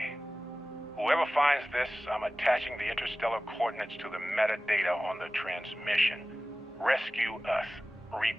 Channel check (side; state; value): both; normal; correlation 0.96